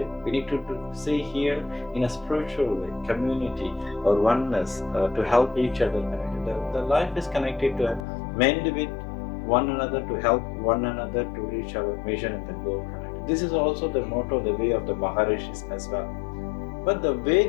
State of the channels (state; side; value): drops out; right; at 8.1 s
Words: We need to see here in a spiritual way, community or oneness to help each other connected. The life is connected to mend with one another, to help one another to reach our mission and the goal connected. This is also the motto, the way of the Maharishis as well. But the way